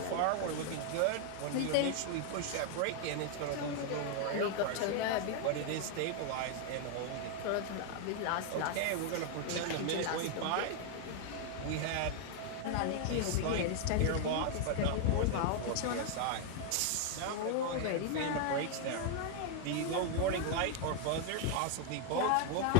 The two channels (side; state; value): both; different; correlation 0.00